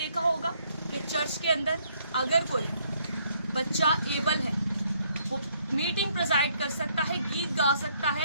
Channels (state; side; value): inverted; both; correlation -0.69